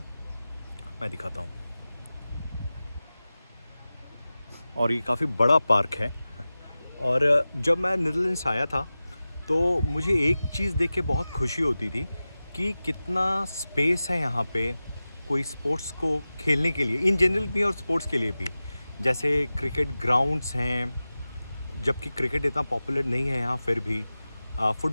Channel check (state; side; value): inverted; both; correlation -0.96